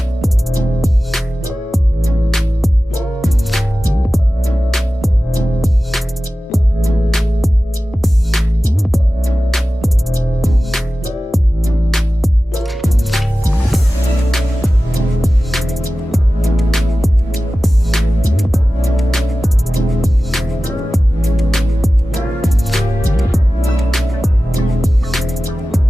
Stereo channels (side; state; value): both; normal; correlation 0.95